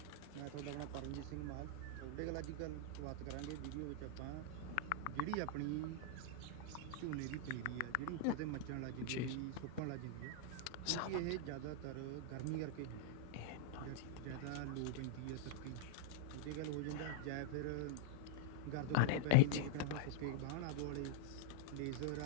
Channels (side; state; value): both; different; correlation -0.02